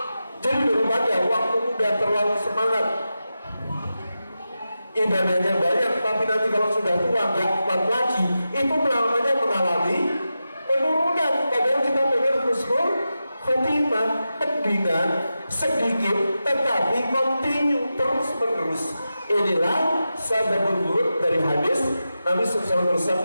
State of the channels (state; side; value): inverted; both; correlation -0.91